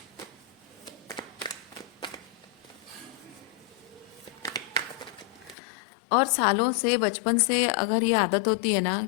और सालों से, बचपन से अगर ये आदत होती है ना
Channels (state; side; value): drops out; right; at 5.6 s